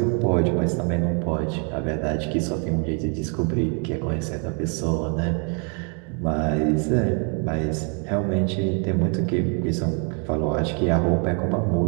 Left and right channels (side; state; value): left; quieter; 38.7 dB